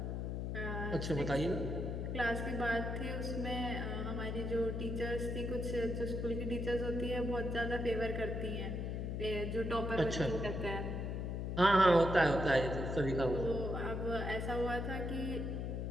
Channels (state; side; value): noise; left; hum, 2 dB below the sound